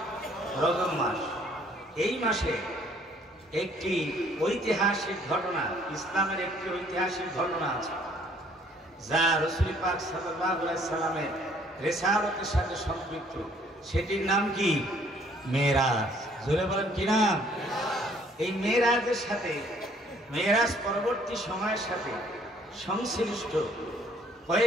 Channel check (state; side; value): normal; both; correlation 0.61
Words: রজব মাস। এই মাসে একটি ঐতিহাসিক ঘটনা, ইসলামের একটি ঐতিহাসিক ঘটনা আছে যা রাসূল পাক সাল্লাল্লাহু আলাইহি সাল্লামের রিসালাতের সাথে সম্পৃক্ত। সেটির নাম কি? মেরাজ। জোরে বলেন কি নাম? এই মেরাজের সাথে, মেরাজ পরবর্তী সময়ের সাথে সংশ্লিষ্ট